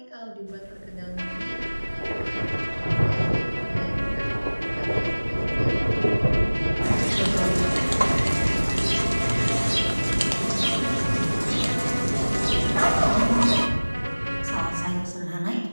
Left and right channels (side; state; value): both; inverted; correlation -1.00